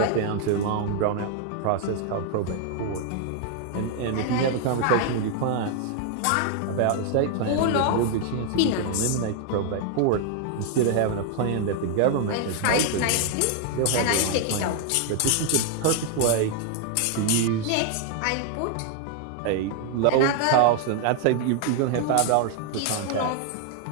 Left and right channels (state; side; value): different; both; correlation 0.00